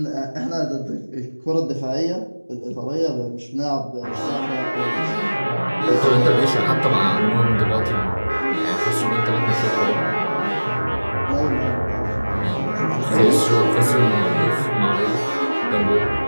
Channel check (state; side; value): inverted; both; correlation -1.00